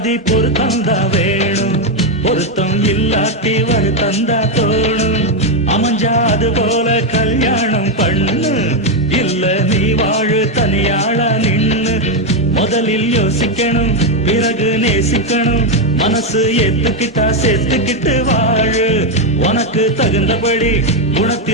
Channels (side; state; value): both; normal; correlation 0.05